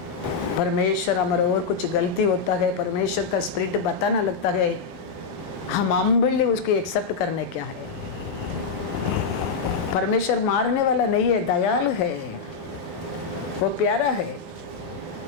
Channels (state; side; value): quieter; right; 5.1 dB